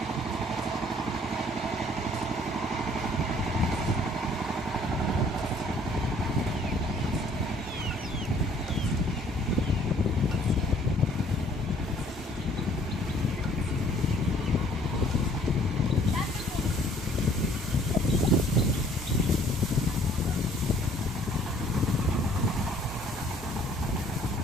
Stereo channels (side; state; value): both; normal; correlation 0.58